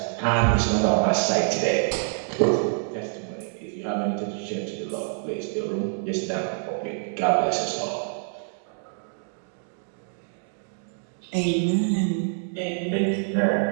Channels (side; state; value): left; silent; digital silence